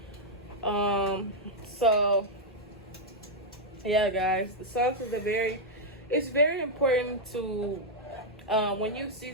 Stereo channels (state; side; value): normal; both; correlation -0.03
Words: So yeah, guys, the sauce is it's very important to when you